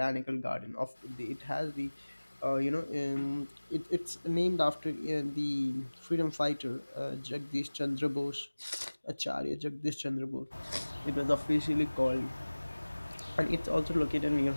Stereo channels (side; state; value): both; inverted; correlation -1.00